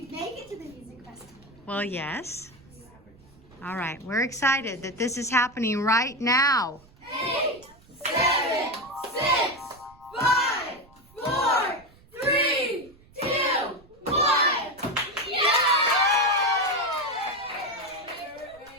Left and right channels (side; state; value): right; noise; rumble, 27 dB below the sound